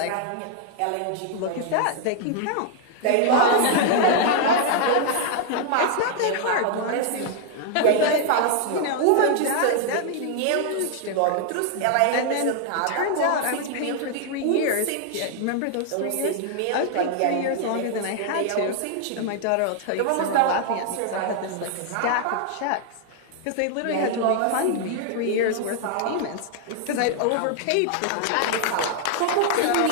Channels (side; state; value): both; different; correlation 0.00